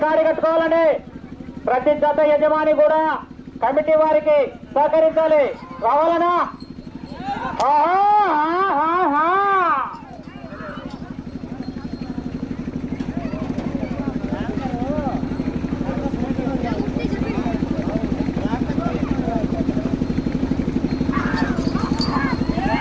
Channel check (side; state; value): both; identical; correlation 1.00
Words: కాడి కట్టుకోవాలని ప్రతి జత యజమాని కూడా కమిటీ వారికి సహకరించాలి. రావాలన్నా